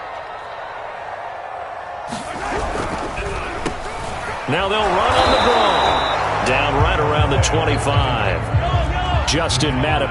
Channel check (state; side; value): identical; both; correlation 1.00